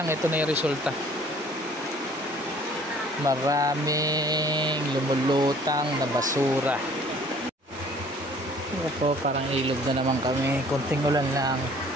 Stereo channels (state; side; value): normal; both; correlation 0.54